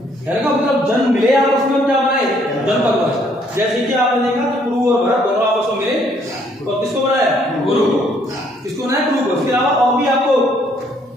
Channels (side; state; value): both; normal; correlation 0.66